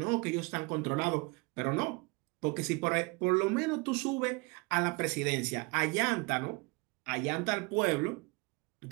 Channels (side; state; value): left; quieter; 28.3 dB